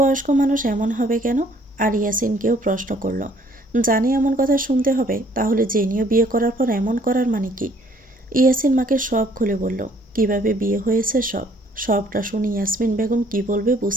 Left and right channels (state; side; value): normal; both; correlation 0.61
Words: মানুষ এমন হবে কেন? আর ইয়াসিনকেও প্রশ্ন করলো, জানি এমন কথা শুনতে হবে, তাহলে জেনিও বিয়ে করার পর এমন করার মানে কি? ইয়াসিন মাকে সব খুলে বলল, কিভাবে বিয়ে হয়েছে সবটা শুনে ইয়াসমিন বেগম কি বলবে